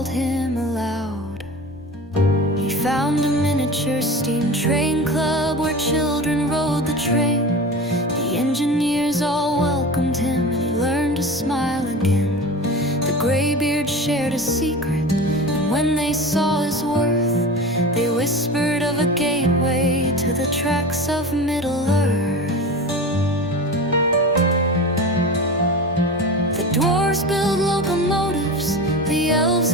him aloud. He found a miniature steam train club where children rode the train. The engineers all welcomed him and he learned to smile again. The graybeard shared a secret, and when they saw his worth, they whispered of a gateway to the tracks of Middle-earth. The dwarves build locomotives, the elves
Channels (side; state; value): both; normal; correlation 0.32